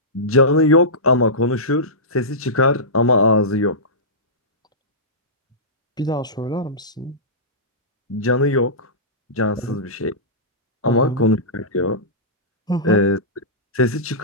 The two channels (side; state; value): both; normal; correlation -0.17